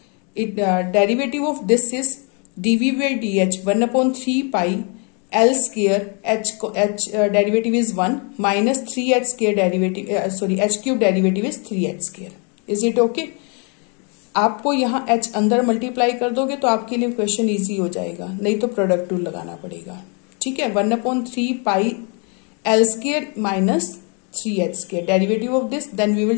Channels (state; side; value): quieter; right; 36.1 dB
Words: derivative of this is dv by dh 1 upon 3 pi l square h derivative is 1 minus 3h square derivative h cube derivative is 3h square. Is it okay? आपको यहाँ h अंदर multiply कर दोगे तो आपके लिए question easy हो जाएगा, नहीं तो प्रोडक्ट रूल लगाना पड़ेगा. ठीक है. 1 upon 3 pi l square minus 3h square derivative of this, then we